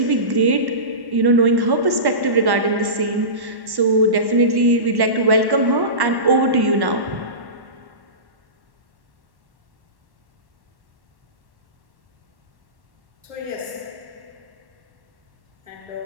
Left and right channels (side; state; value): left; late; 1.1 ms